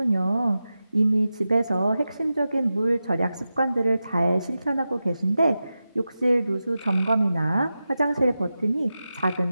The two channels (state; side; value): inverted; both; correlation -0.93